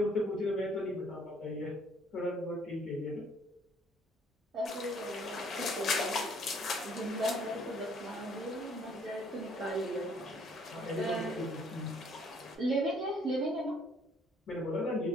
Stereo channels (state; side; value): normal; both; correlation 0.62